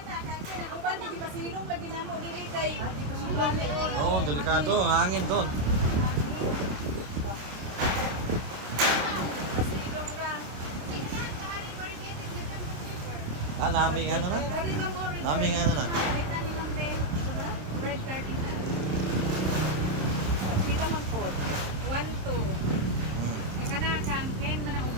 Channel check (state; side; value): late; left; 26 ms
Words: Oh, delikado. Hangin doon. naming ano? Naming ano na? Palitan lang din. Red cardinal. Sila man po. 1-2. May kana kang Ken man ang